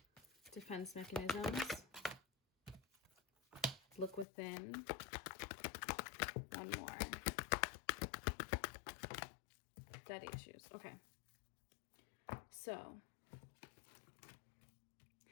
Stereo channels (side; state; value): right; drops out; at 4.2 s